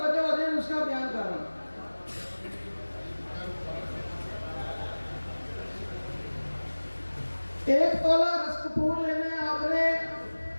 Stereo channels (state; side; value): inverted; both; correlation -1.00